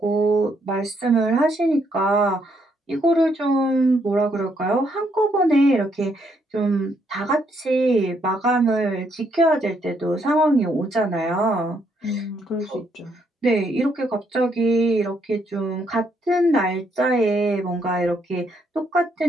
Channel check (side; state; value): both; normal; correlation 0.73